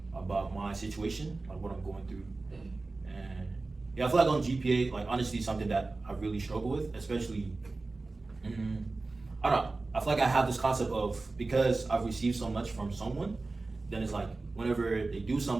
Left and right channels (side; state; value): left; quieter; 3.5 dB